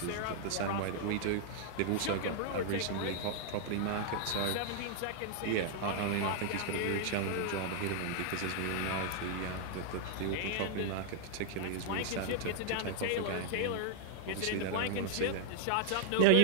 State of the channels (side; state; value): both; different; correlation 0.00